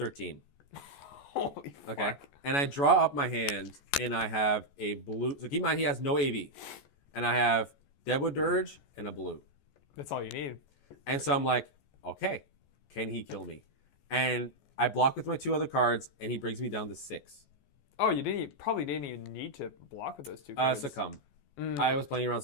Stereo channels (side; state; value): right; late; 14 ms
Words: Holy fuck. Okay. And I draw up my hand and I have a blue. So keep in mind he has no AV. And I have Deadwood Dirge and a blue. That's all you need. And so I'm like, okay, can he kill me? And I block with my 2 other cards and he brings me down to 6. Oh, you probably didn't even need to block with those 2 cards. Succumb. I was playing around